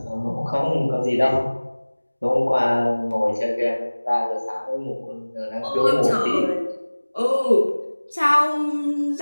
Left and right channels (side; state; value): both; inverted; correlation -1.00